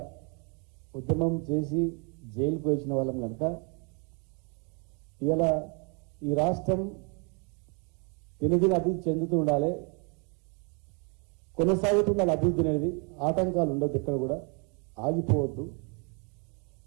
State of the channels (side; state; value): left; quieter; 36.0 dB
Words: ఉద్యమం చేసి జైలుకు వచ్చిన వాళ్ళం కనుక ఇలా ఈ రాష్ట్రం దినదిన అభివృద్ధి చెందుతూ ఉండాలి, కొనసాగుతుండాలి అభివృద్ధి అనేది. ఆటంకాలు ఉండొద్దు, ఎక్కడ కూడా ఆగిపోవద్దు.